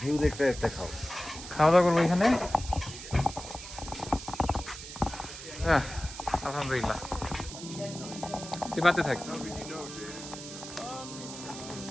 দেখতে একটা খাও খাওয়া দাওয়া করবো এখানে। আলহামদুলিল্লাহ, তুই বাড়তে থাক।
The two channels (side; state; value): right; noise; hiss, 11 dB below the sound